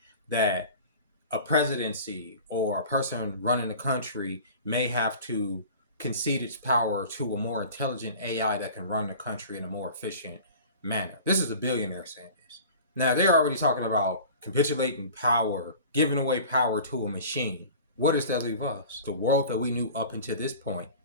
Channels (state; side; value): inverted; both; correlation -0.41